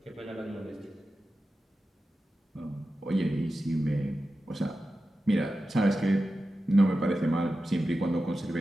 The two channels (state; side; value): normal; both; correlation 0.92